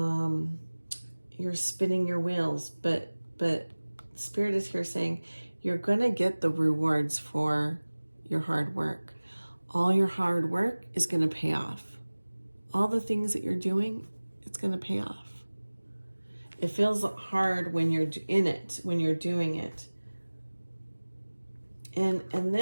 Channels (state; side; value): inverted; both; correlation -1.00